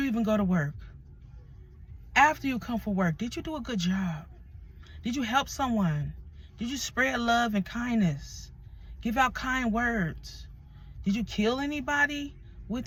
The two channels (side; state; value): both; identical; correlation 1.00